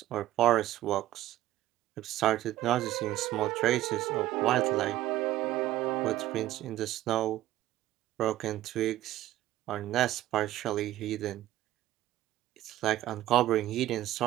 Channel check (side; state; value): left; quieter; 14.5 dB